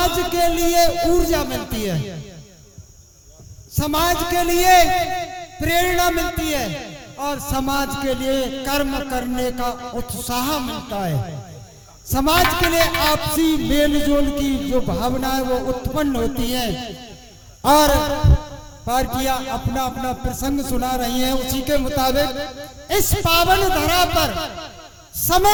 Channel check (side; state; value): both; identical; correlation 1.00